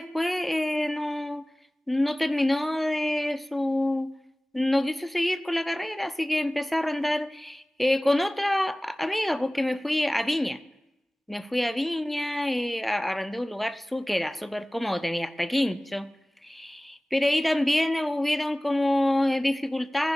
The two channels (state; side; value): normal; both; correlation 0.98